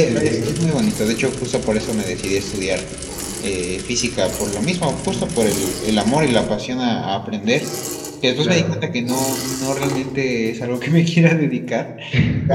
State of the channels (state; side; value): identical; both; correlation 1.00